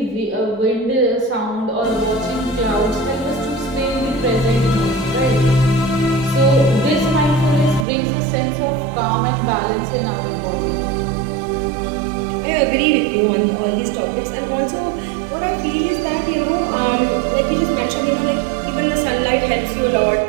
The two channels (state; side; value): drops out; left; at 7.9 s